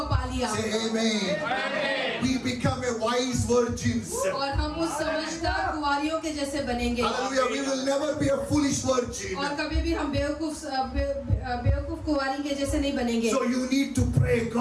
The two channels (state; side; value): identical; both; correlation 1.00